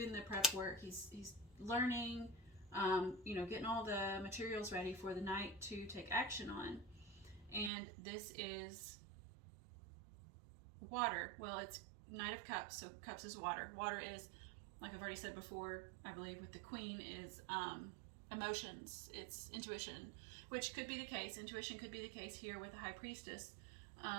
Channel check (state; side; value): drops out; left; at 7.7 s